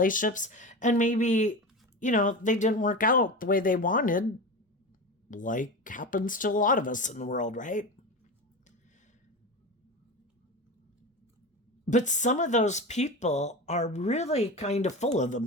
And maybe, they didn't work out the way they wanted, like happens to a lot of us in the world, right? But some of those people are really kind of full of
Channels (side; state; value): both; normal; correlation 0.25